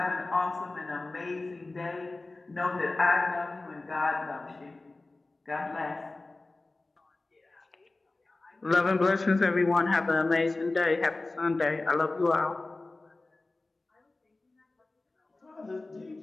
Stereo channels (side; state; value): right; quieter; 3.2 dB